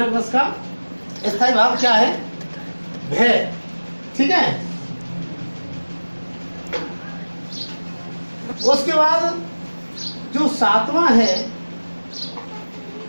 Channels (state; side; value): inverted; both; correlation -1.00